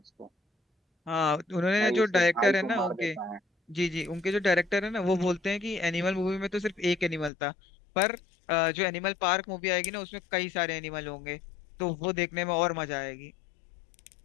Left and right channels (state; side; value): drops out; right; at 7.3 s